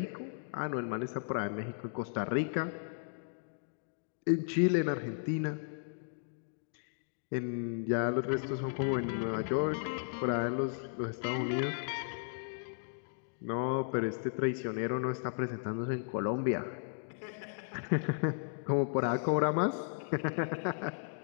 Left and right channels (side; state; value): right; silent; digital silence